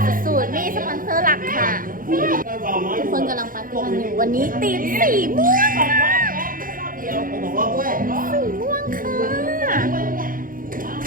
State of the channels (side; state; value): left; late; 0.40 ms